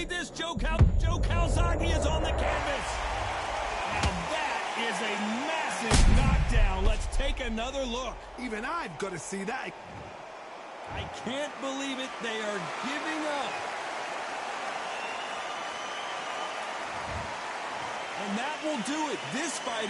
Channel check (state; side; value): identical; both; correlation 1.00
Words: this? Joe Calzaghe is on the canvas. Now that is a massive knockdown. Let's take another look. Even I've got to see that. I can't believe it. They are giving up. And that will do it. This fight